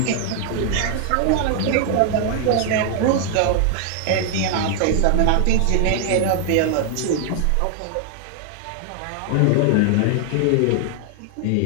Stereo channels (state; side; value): different; both; correlation 0.00